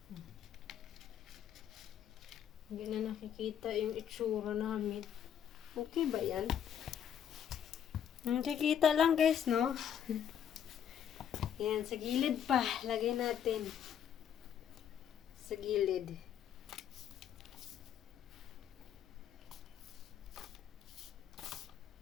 Hindi na nakikita yung itsura namin. Okay ba yan? Nakikita lang guys, no? Yan, sa gilid pa. Lagay natin. Sa gilid.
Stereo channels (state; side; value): quieter; right; 9.1 dB